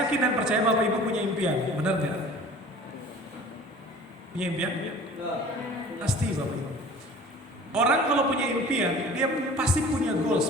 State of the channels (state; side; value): normal; both; correlation 0.45